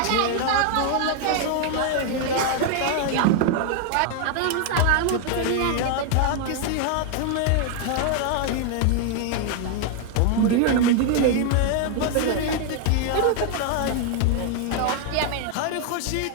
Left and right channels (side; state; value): both; different; correlation 0.00